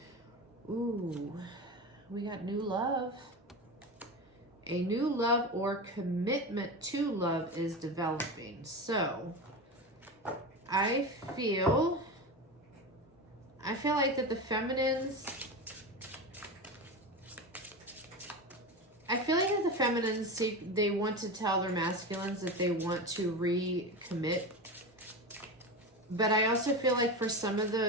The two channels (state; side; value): normal; both; correlation 0.23